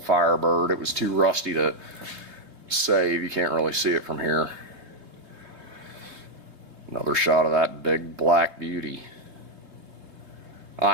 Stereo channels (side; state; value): left; late; 3.5 ms